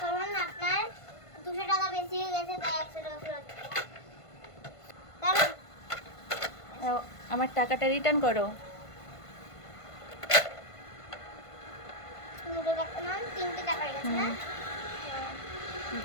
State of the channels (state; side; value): late; right; 1.5 ms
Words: আপনার 200 টাকা বেশি হয়ে গেছে, তাই 100 টাকা ফেরত। দাঁড়ান। নাও, আমার টাকাটা রিটার্ন করো। 200 টাকা না, 300 টাকা হয়ে গেছে না?